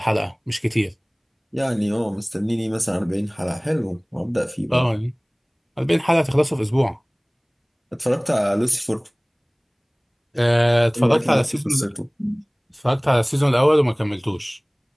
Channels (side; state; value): both; identical; correlation 1.00